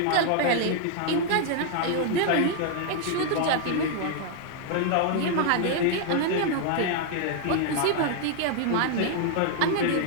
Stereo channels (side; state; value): both; different; correlation 0.00